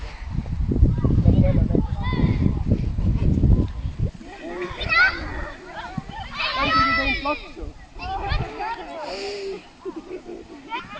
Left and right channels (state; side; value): identical; both; correlation 1.00